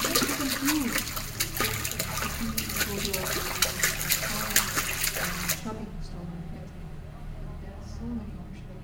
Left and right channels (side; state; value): both; identical; correlation 1.00